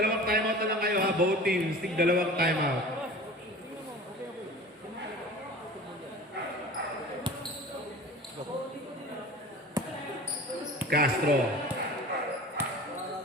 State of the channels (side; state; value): both; normal; correlation 0.39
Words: timeout na lang kayo ha. Both teams, need dalawang timeout. Castro